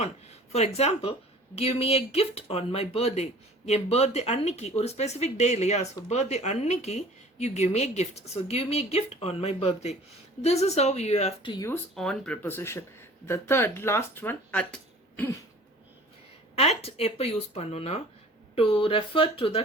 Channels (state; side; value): normal; both; correlation 0.47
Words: on. For example, give me a gift on my birthday. N birthday அன்னைக்கு ஒரு specific day இல்லையா? So birthday அன்னைக்கு you give me a gift. So give me a gift on my birthday. This is how you have to use on preposition. The third, last one, at. At எப்போ use பண்ணோம்னா to refer to the